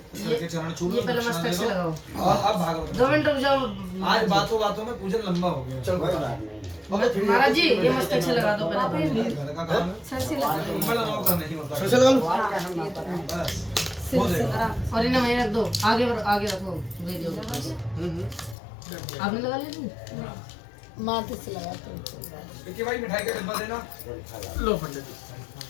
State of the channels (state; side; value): drops out; right; at 18.6 s